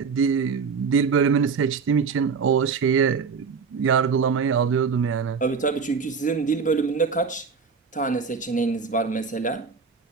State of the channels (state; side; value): quieter; left; 5.5 dB